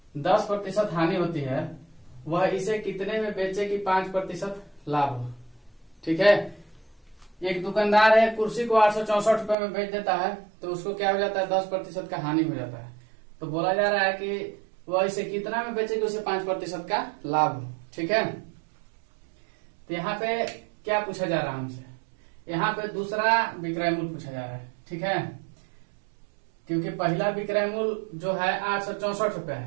10% हानि होती है, वह इसे कितने में बेचे कि 5% लाभ हो। ठीक है, एक दुकानदार है, कुर्सी को 864 रुपए में बेच देता है, तो उसको क्या हो जाता है? 10% का हानि हो जाता है। तो बोला जा रहा है कि वह इसे कितना में बेचेगी, उसे 5% का लाभ हो। ठीक है, तो यहाँ पे क्या पूछा जा रहा है हमसे, यहाँ पे दूसरा विक्रय मूल्य पूछा जा रहा है। ठीक है, क्योंकि पहला विक्रय मूल्य जो है 864 रुपया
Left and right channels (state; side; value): drops out; left; at 9.6 s